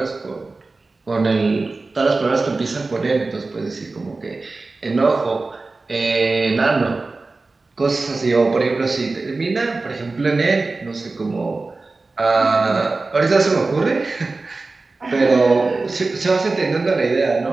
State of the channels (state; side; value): quieter; left; 3.6 dB